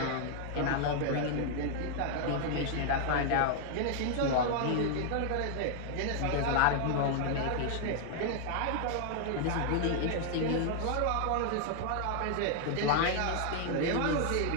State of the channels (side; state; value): both; different; correlation 0.00